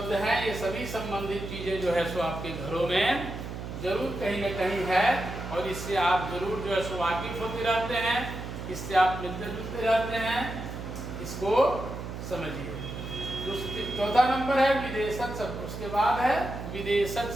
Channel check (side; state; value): right; noise; hum, 8 dB below the sound